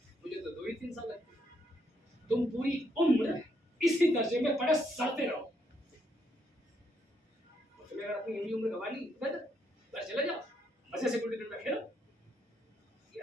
मुझे तो 2 ही 3 साल लगते हैं। तुम पूरी उम्र इसी दर्जे में पढ़े सड़ते रहो। तुम्हें अगर अपनी यही उम्र गंवा ली, घर चले जाओ, मजे से गुल्ली डंडा खेलो।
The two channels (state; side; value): normal; both; correlation 0.75